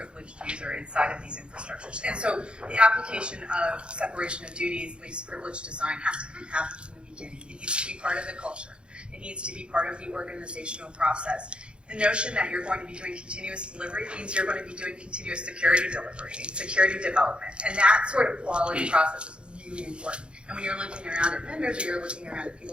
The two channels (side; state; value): left; late; 0.055 ms